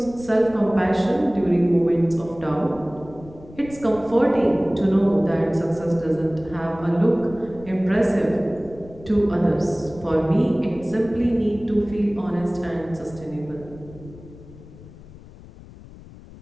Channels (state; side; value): noise; left; rumble, 19 dB below the sound